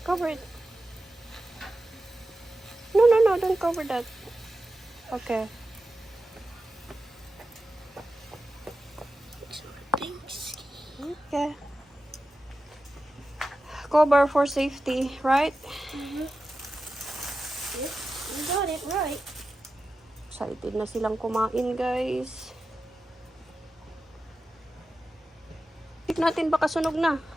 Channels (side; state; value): both; normal; correlation 0.92